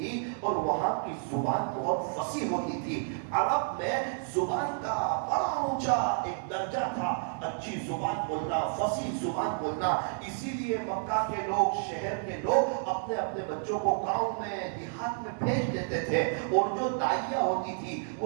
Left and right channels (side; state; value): left; silent; 57 dB below the other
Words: اور وہاں کی زبان بہت فصیح ہوتی تھی۔ عرب میں زبان کا بڑا اونچا ایک درجہ تھا، اچھی زبان بولنا، فصیح زبان بولنا۔ اسی لیے مکہ کے لوگ، شہر کے لوگ اپنے اپنے بچوں کو گاؤں میں، دیہات میں بھیج دیتے تھے، اور جو دائیہ ہوتی تھی